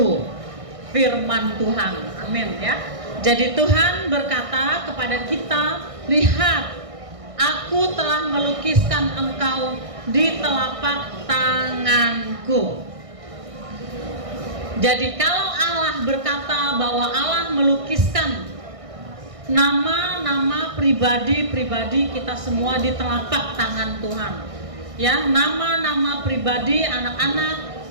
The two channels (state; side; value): late; left; 1.6 ms